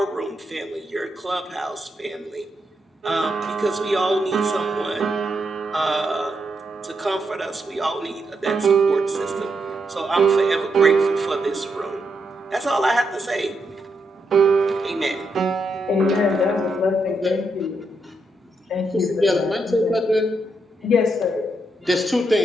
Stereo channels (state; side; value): normal; both; correlation 0.81